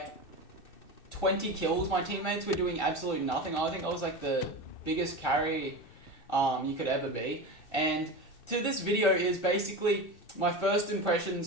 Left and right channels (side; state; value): right; late; 2.6 ms